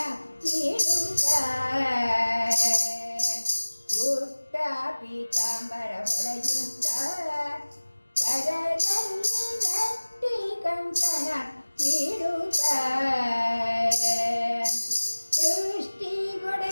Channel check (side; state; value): both; inverted; correlation -1.00